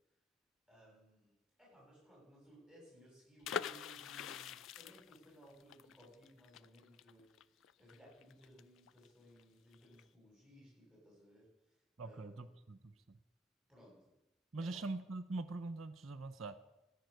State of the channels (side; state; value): both; normal; correlation 0.54